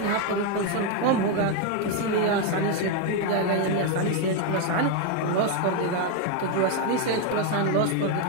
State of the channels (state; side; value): different; both; correlation 0.01